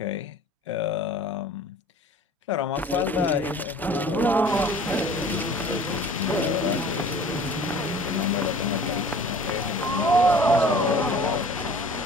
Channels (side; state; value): both; normal; correlation 0.47